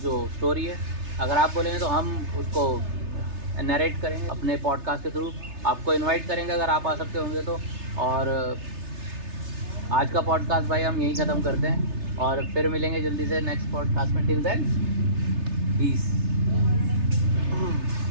स्टोरी है, अगर आप बोलेंगे तो हम उसको नरेट करेंगे अपने पॉडकास्ट के थ्रू, आपको इनवाइट करेंगे अगर आप आ सकते होंगे तो। और आज का पॉडकास्ट भाई हम यहीं ख़त्म करते हैं, और फिर मिलेंगे जल्दी से नेक्स्ट पॉडकास्ट में। Till then, peace.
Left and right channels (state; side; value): late; left; 3.3 ms